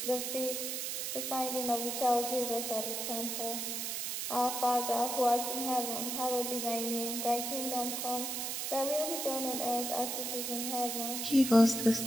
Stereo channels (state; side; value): noise; right; hiss, 2 dB below the sound